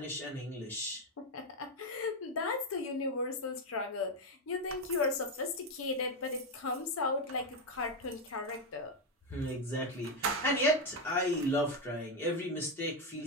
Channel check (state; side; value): normal; both; correlation 0.07